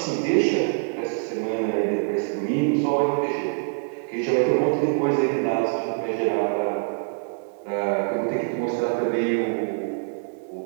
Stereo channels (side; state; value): left; silent; digital silence